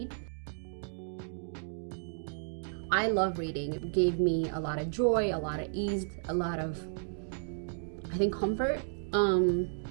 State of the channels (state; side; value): silent; left; digital silence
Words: I love reading. It gave me a lot of joy, a lot of ease, a lot of, I think, comfort.